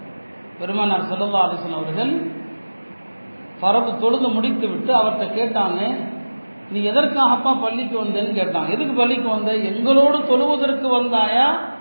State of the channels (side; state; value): both; inverted; correlation -1.00